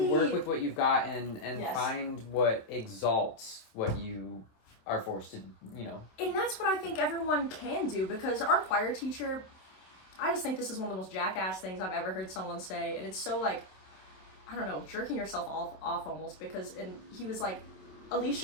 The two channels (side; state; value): right; late; 27 ms